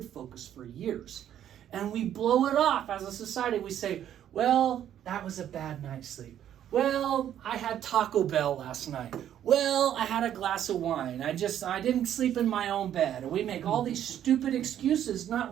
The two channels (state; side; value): quieter; left; 10.6 dB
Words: focus for years. And we blow it off as a society. We say, well, that was a bad night's sleep. Well, I had Taco Bell last night. Well, I had a glass of wine. I didn't sleep in my own bed. And we make all these stupid excuses,